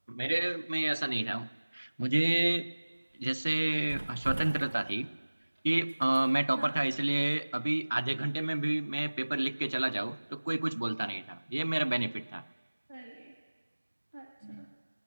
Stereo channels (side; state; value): both; inverted; correlation -1.00